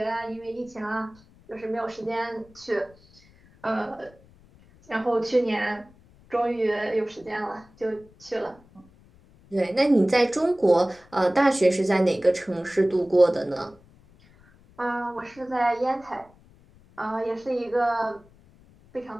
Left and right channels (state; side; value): noise; left; rumble, 27 dB below the sound